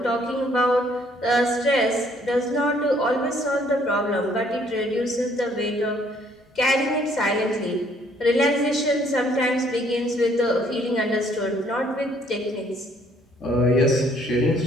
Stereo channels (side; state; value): both; normal; correlation 0.64